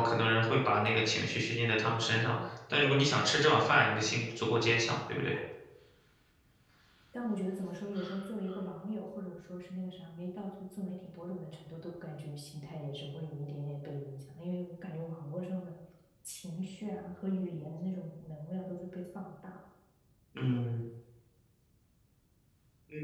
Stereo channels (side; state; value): both; identical; correlation 1.00